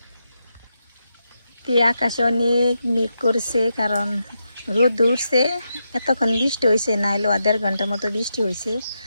আকাশে অনেক মেঘ করছে কারণ রোদ উঠছে এতক্ষণ বৃষ্টি হয়েছে না হলেও 1.5 ঘন্টার মতো বৃষ্টি হয়েছে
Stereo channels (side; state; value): both; inverted; correlation -0.85